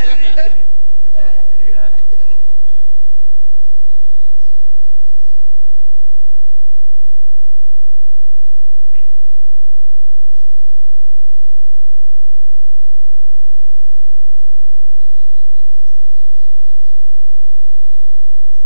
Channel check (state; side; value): inverted; both; correlation -1.00